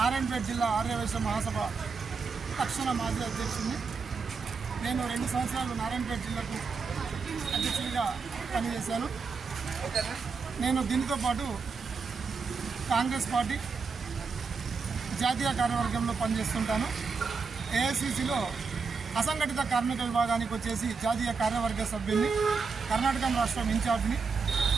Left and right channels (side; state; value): left; quieter; 5.0 dB